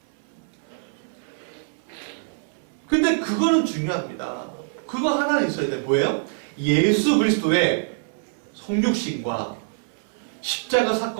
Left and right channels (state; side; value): silent; left; 59 dB below the other